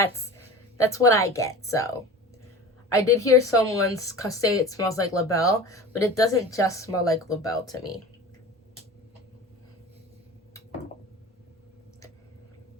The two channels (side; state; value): both; normal; correlation 0.36